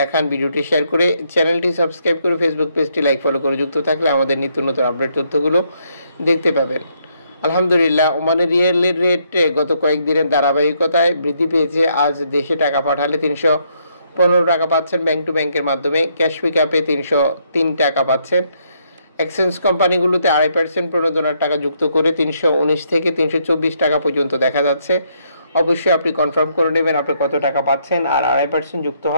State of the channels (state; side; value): inverted; both; correlation -0.73